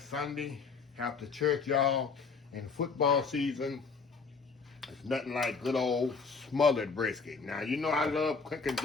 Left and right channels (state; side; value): quieter; right; 5.0 dB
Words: after church, y'all. In football season, it's nothing like good old smothered brisket. Now, you know I love cooking